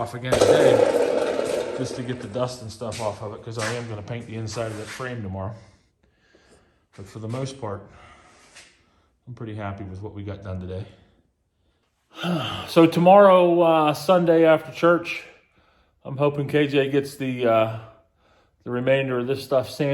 again today just to get the dust and stuff off of it, because I am going to paint the inside of that frame tomorrow. But for the most part, I'm pretty happy with what we got done today. So tomorrow, Sunday after church, I'm hoping KJ gets the remainder of this stuff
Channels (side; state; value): both; identical; correlation 1.00